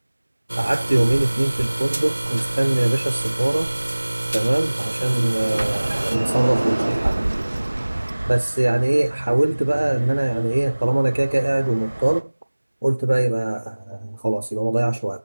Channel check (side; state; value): both; inverted; correlation -1.00